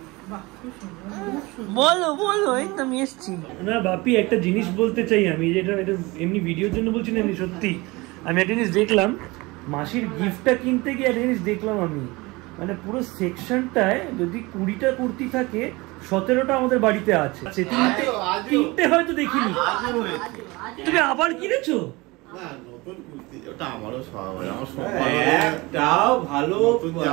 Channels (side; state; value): left; quieter; 23.2 dB